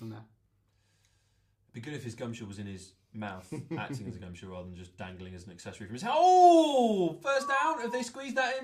there. It'd be good if his gumshoe was in his mouth, acting as a gumshoe rather than just dangling as an accessory from his head. Oh! First down? Have they squeezed that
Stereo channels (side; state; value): both; identical; correlation 1.00